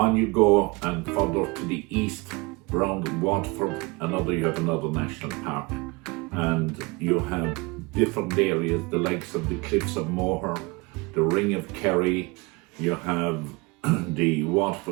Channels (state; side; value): quieter; left; 26.5 dB